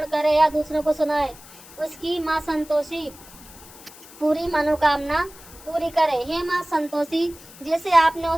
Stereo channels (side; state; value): left; noise; hiss, 20 dB below the sound